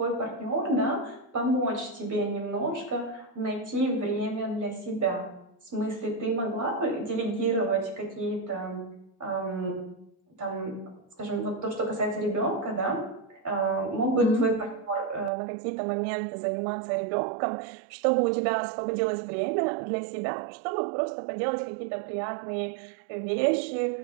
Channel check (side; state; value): left; drops out; at 15.3 s